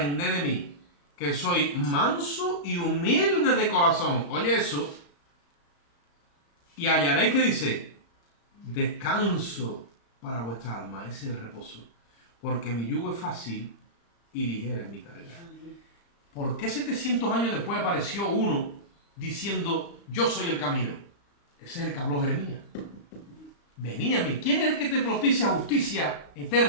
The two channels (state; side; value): late; right; 35 ms